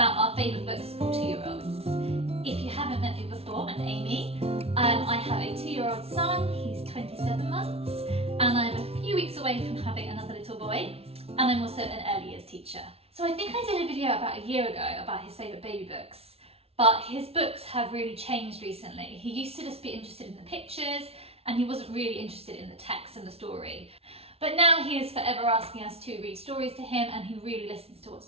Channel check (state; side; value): late; left; 0.29 ms